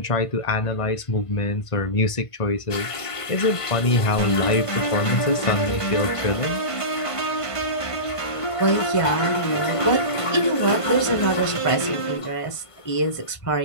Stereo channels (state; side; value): late; right; 1.5 ms